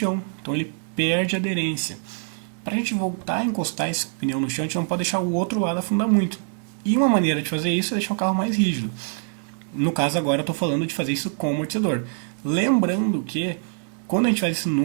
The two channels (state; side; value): silent; left; 63 dB below the other